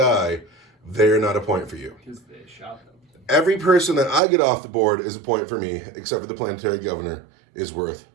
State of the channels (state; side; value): drops out; left; at 4.2 s